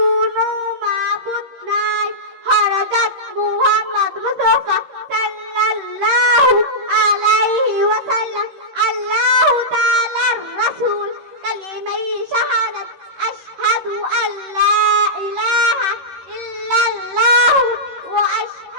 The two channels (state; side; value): late; left; 13 ms